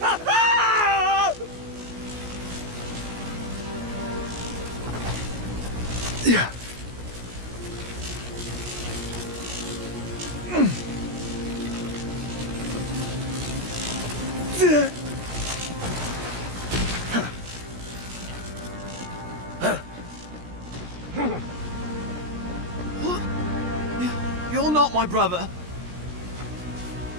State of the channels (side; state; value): left; late; 17 ms